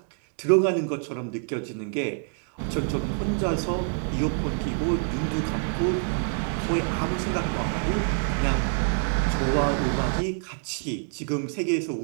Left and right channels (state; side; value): silent; left; 61 dB below the other